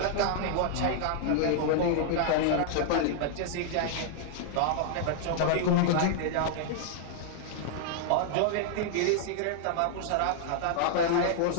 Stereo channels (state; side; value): different; both; correlation -0.01